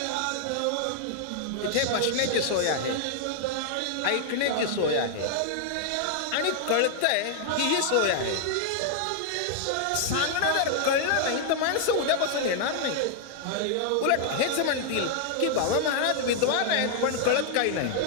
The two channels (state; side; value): different; both; correlation 0.00